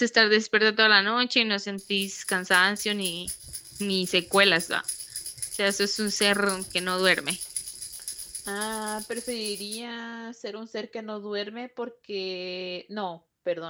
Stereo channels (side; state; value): both; identical; correlation 1.00